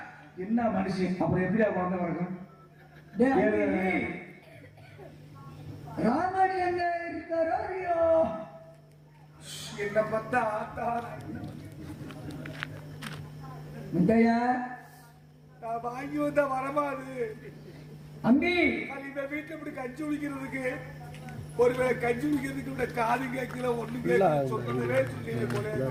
என்ன மனுஷன், அப்புறம் எப்படியா குழந்தை பிறக்கும்? டேய், அம்பி, ராமன் எங்க இருக்காரோ இல்லையோ? என்ன பார்த்தா ஆத்தா முத்தையா நான் வாங்கி வந்த வரமாது. அம்பி இந்த வீட்டுல இப்படி கஞ்சி குடிக்கிறதுக்கு, ஒருவேளை கஞ்சி குடிக்கிறதுக்கு இந்த காது கேட்கல ஒண்ணு கேட்கல சொல்றதே சொல்லி போல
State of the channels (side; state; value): both; identical; correlation 1.00